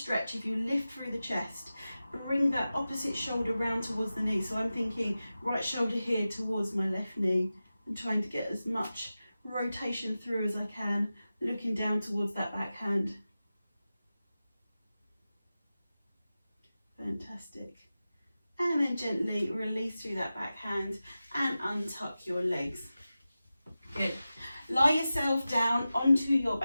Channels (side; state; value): both; inverted; correlation -0.94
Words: if you lift through the chest. Bring that opposite shoulder round towards the knee. So I'm thinking right shoulder here towards my left knee and trying to get as much rotation through as I can, looking down towards that back hand. Fantastic. And then gently release through that back hand and untuck your legs. Good. Lie yourself down onto your